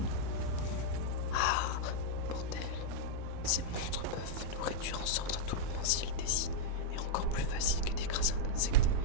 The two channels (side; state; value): both; different; correlation -0.02